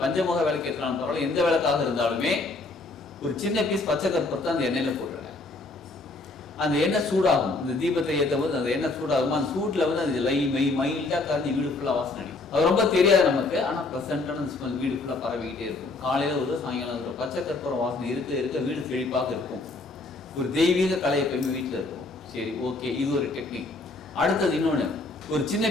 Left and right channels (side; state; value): right; quieter; 3.4 dB